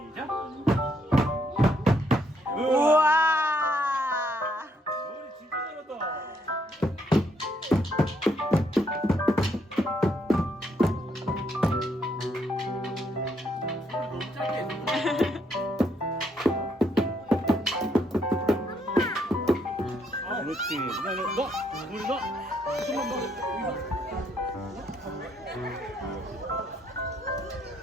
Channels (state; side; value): normal; both; correlation 0.73